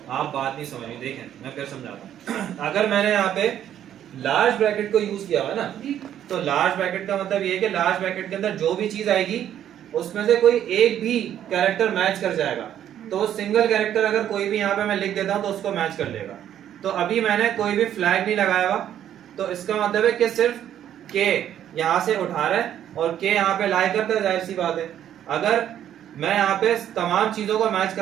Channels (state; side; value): quieter; left; 10.6 dB